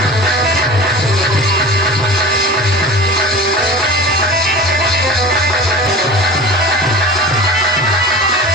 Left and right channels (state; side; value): normal; both; correlation 0.36